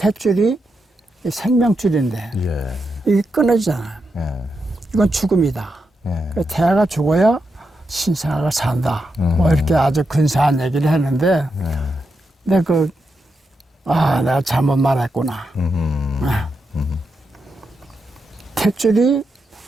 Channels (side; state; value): both; normal; correlation 0.85